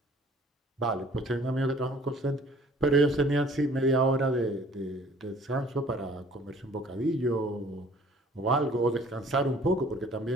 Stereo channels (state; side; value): normal; both; correlation 0.53